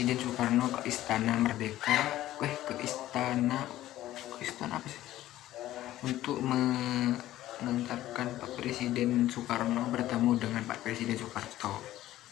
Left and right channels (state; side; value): quieter; right; 14.4 dB